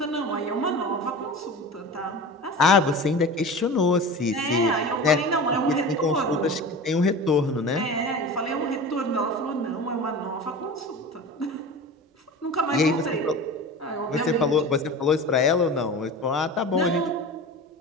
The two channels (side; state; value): both; normal; correlation 0.33